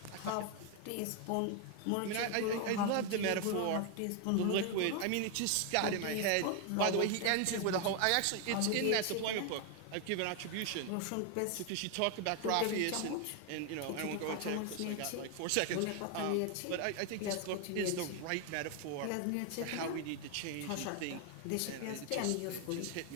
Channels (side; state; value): both; different; correlation 0.01